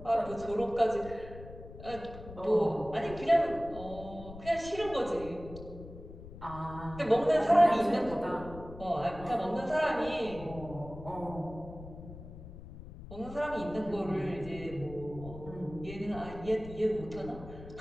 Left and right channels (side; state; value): left; noise; rumble, 14 dB below the sound